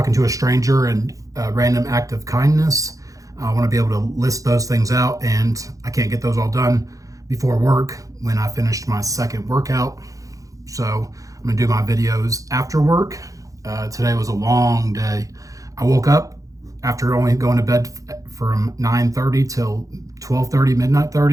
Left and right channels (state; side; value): late; left; 0.16 ms